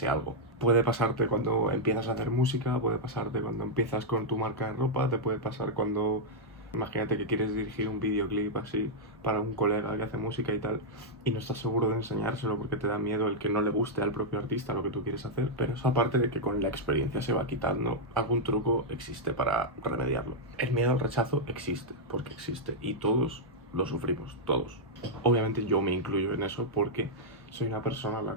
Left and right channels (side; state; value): both; normal; correlation -0.05